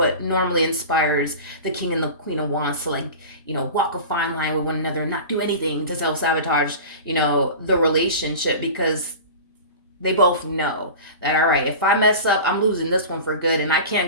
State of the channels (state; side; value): inverted; both; correlation -0.34